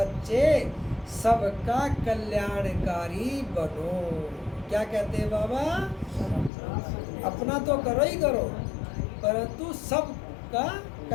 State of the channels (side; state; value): right; drops out; at 6.5 s